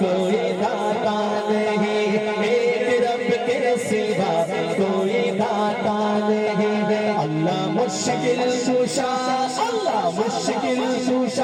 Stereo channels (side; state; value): both; identical; correlation 1.00